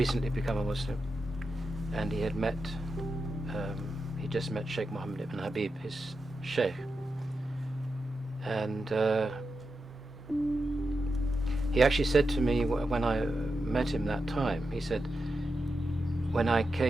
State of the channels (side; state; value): both; normal; correlation 0.89